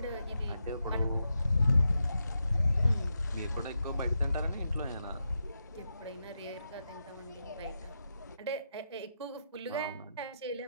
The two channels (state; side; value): inverted; both; correlation -0.86